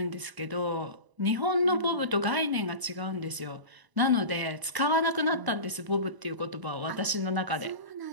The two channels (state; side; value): late; left; 1.0 ms